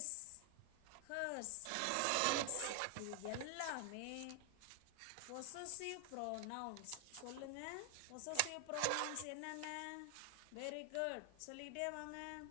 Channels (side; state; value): both; different; correlation 0.00